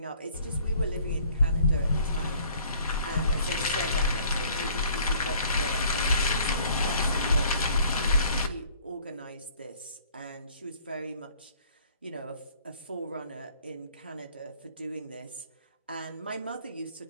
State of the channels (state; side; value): inverted; both; correlation -0.56